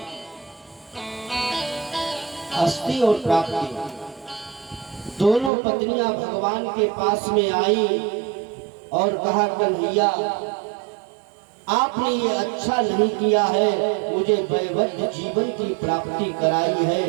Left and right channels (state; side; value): drops out; left; at 5.5 s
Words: अस्थि और प्राप्ति दोनों पत्नियां भगवान के पास में आई और कहा, कन्हैया आपने ये अच्छा नहीं किया है, मुझे वैवध्य जीवन की प्राप्ति कराई है,